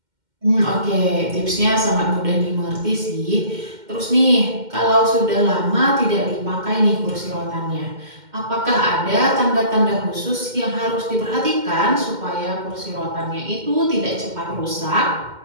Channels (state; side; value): late; left; 2.1 ms